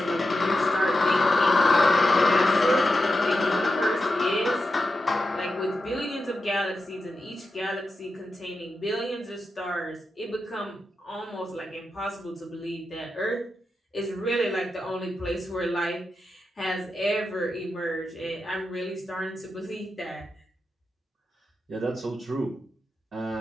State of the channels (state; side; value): normal; both; correlation 0.89